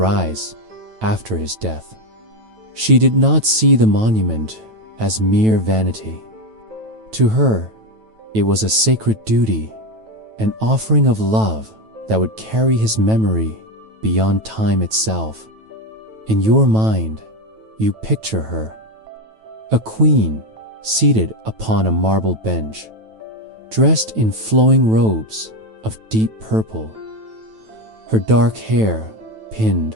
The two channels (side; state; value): left; late; 9.2 ms